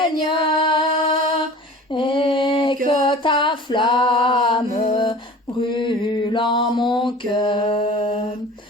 et que ta flamme brûle en mon cœur.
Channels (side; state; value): both; normal; correlation 0.42